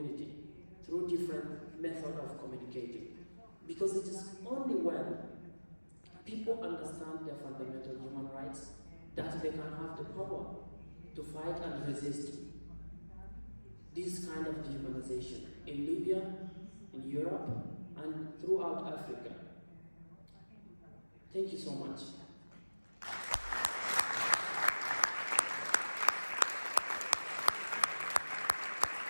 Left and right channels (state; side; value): inverted; both; correlation -1.00